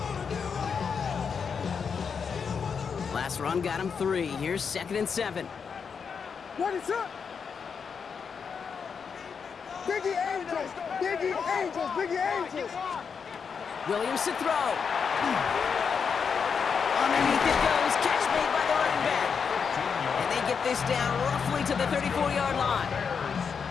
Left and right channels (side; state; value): right; quieter; 6.2 dB